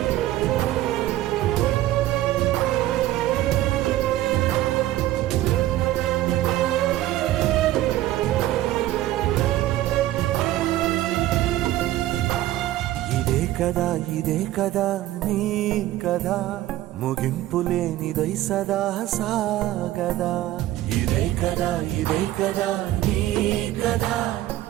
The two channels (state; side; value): quieter; left; 14.8 dB